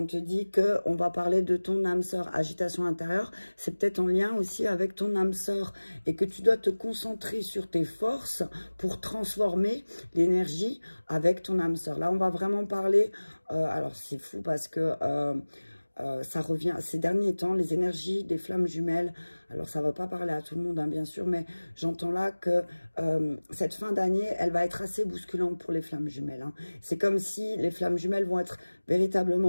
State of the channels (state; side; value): inverted; both; correlation -1.00